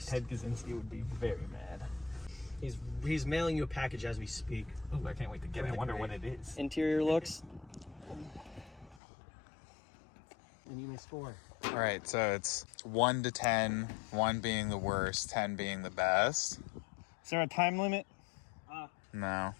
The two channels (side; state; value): right; drops out; at 9.0 s